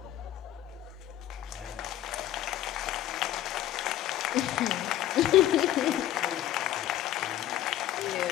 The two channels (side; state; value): right; quieter; 13.0 dB